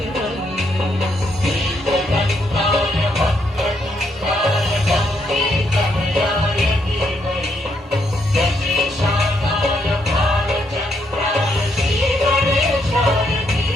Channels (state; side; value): normal; both; correlation 0.75